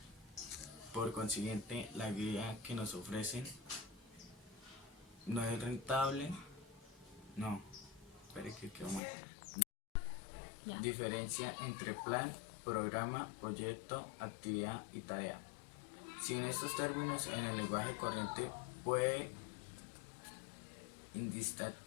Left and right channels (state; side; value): drops out; right; at 9.0 s